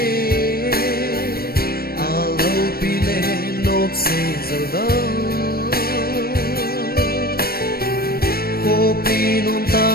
kopi non ta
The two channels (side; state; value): right; late; 0.44 ms